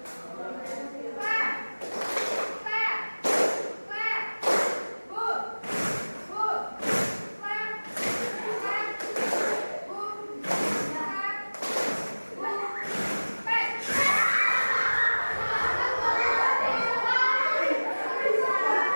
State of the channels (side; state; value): both; inverted; correlation -1.00